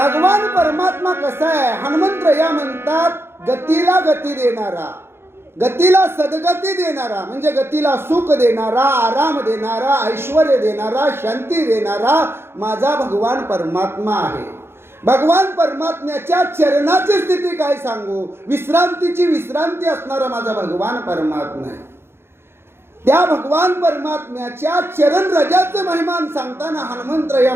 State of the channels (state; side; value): late; left; 0.12 ms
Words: परमात्मा कसा आहे? हनुमंतराया म्हणतात, गतीला गती देणारा, गतीला सद्गती देणारा, म्हणजे गतीला सुख देणारा, आराम देणारा, ऐश्वर्य देणारा, शांती देणारा माझा भगवान परमात्मा आहे. भगवान परमात्म्याच्या चरणाची स्थिती काय सांगू, विश्रांतीची विश्रांती असणारा माझा भगवान परमात्मा आहे. त्या भगवान परमात्म्याच्या चरण रजाचं महिमान सांगताना हनुमंतराया